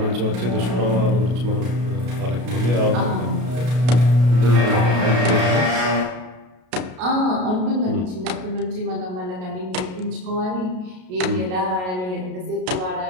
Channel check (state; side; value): late; left; 33 ms